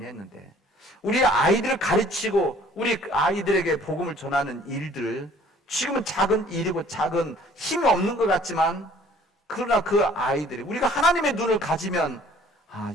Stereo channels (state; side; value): normal; both; correlation 0.55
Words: 했는데, 우리 아이들을 가르치고 우리 아이들에게 복음을 전하는 일들, 지금은 작은 일이고 작은 힘이 없는 것 같지만, 그러나 그 아이들이, 우리가 하나님의 눈을 가지면